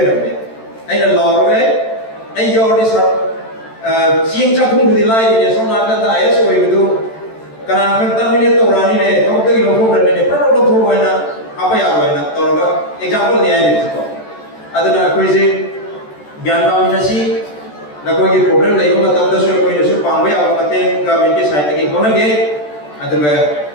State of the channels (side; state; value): right; late; 13 ms